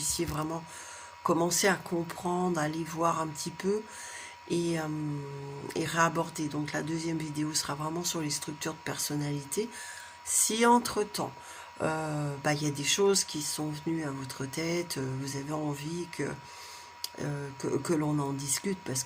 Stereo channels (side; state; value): both; identical; correlation 1.00